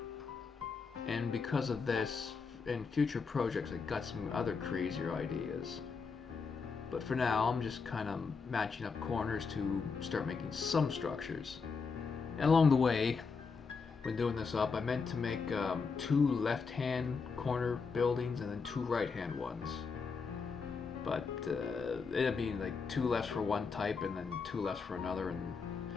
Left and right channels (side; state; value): right; quieter; 5.1 dB